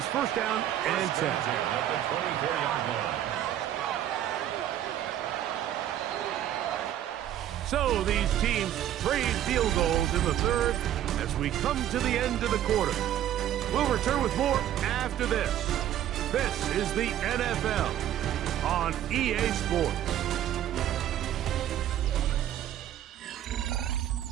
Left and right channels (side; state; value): left; quieter; 11.6 dB